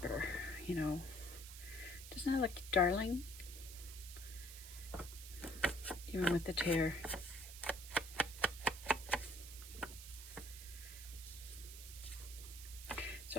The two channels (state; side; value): noise; right; hiss, 12 dB below the sound